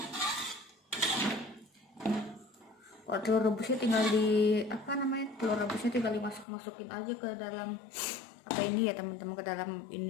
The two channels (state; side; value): drops out; right; at 6.5 s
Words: Telur rebusnya tinggal telur rebusnya tinggal dimasukin aja ke dalam ini ya teman-teman, ke dalam